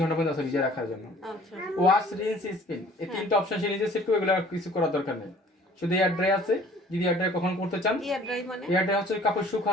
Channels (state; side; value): normal; both; correlation 0.53